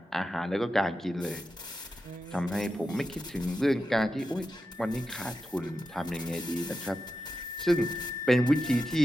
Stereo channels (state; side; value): normal; both; correlation 0.89